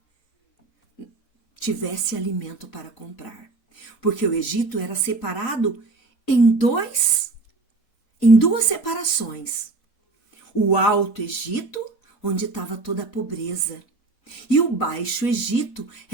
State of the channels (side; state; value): left; quieter; 3.6 dB